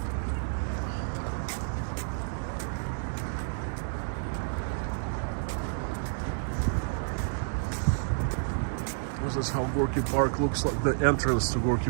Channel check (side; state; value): left; silent; digital silence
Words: This is how Gorky Park looks like. The entrance to Gorky